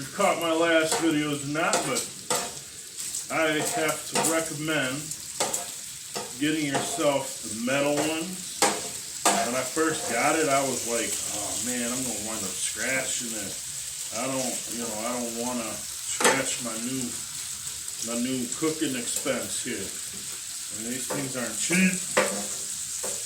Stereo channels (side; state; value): both; identical; correlation 1.00